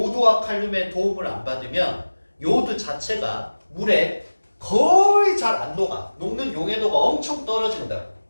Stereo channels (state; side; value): inverted; both; correlation -1.00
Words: 칼륨의 도움을 안 받으면 요오드 자체가 물에 거의 잘 안 녹아. 녹는 용해도가 엄청 떨어진다.